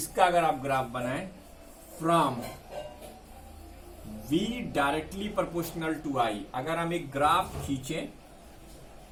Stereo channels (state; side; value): identical; both; correlation 1.00